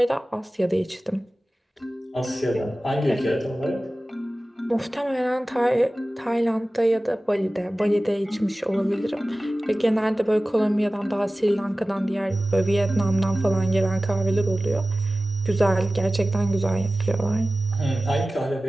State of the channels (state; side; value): normal; both; correlation 0.97